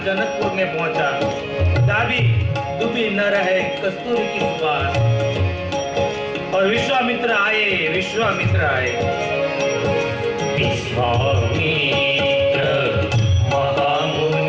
जनकपुर में पहुंचा। दाबी दुबी न रहे कस्तूरी की सुवास। और विश्वामित्र आए। विश्वामित्र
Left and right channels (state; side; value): identical; both; correlation 1.00